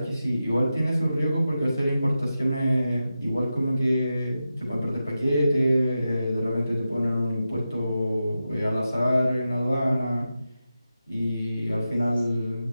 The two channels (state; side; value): inverted; both; correlation -0.91